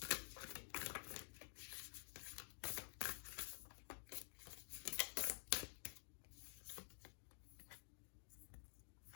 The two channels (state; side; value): silent; right; digital silence